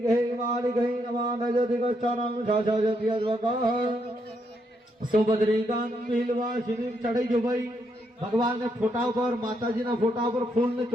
मालिकै नमः नजदिगच्छानं शाशाजत्यद्वकः सुभद्रिकां बिलवासिनी चढ़ाई जो भाई भगवान ने फोटा पर माताजी ना फोटा पर फूल ने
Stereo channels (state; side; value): normal; both; correlation 0.77